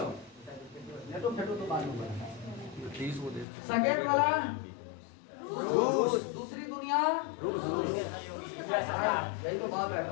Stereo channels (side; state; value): right; drops out; at 3.5 s